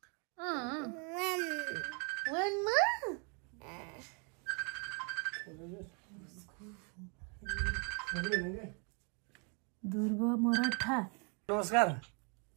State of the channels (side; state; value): left; quieter; 35.7 dB